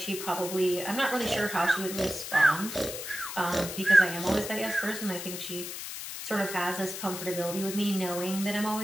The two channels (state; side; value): noise; left; hiss, 8 dB below the sound